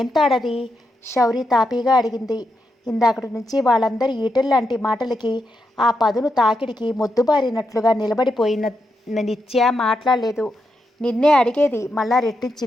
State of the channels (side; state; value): both; normal; correlation 0.84